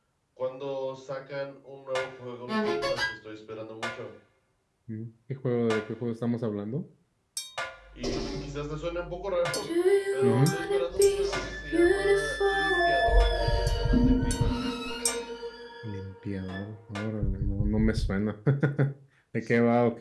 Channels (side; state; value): both; identical; correlation 1.00